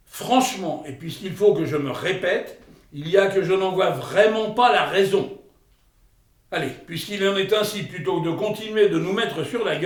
Franchement, et puisqu'il faut que je me répète, il y a que je n'en vois vraiment pas la raison. Allez, puisqu'il en est ainsi, plutôt que de continuer de nous mettre sur la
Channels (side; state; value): both; identical; correlation 1.00